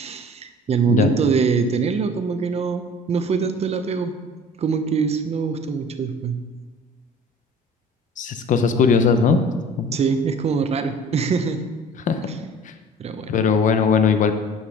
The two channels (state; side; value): normal; both; correlation 0.46